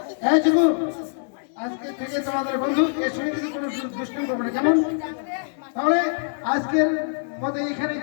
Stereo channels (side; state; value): right; silent; digital silence